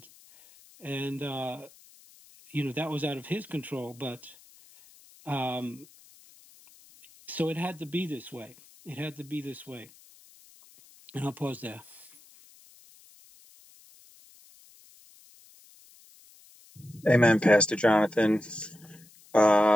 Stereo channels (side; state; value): left; noise; hiss, 25 dB below the sound